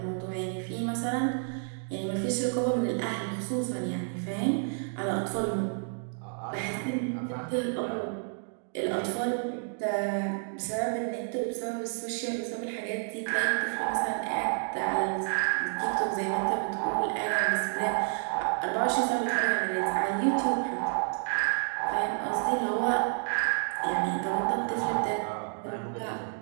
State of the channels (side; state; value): left; silent; 58 dB below the other